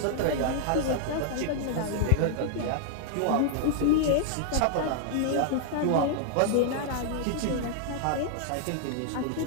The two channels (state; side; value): different; both; correlation -0.01